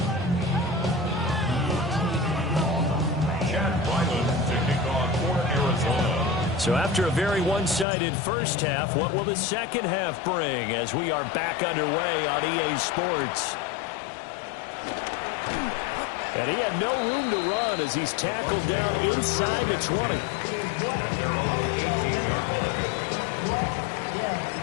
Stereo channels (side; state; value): right; drops out; at 7.9 s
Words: So after a very one-sided first half, what will the second half bring as we are back underway on EA Sports? And he had no room to run as he's tackled down inside the 20.